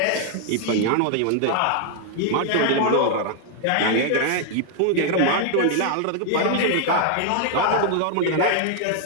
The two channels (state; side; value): different; both; correlation 0.00